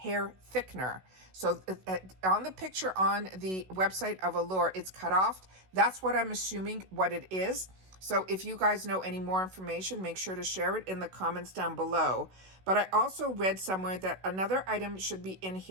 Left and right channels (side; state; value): left; late; 16 ms